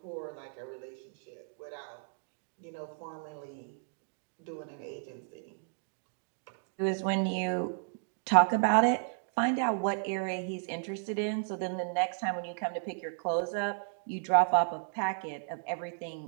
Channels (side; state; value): left; silent; digital silence